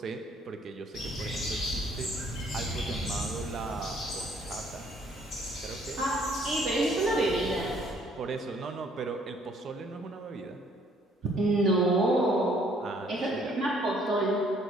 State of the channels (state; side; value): normal; both; correlation 0.62